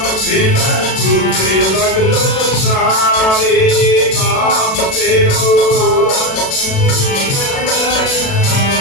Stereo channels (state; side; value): late; right; 37 ms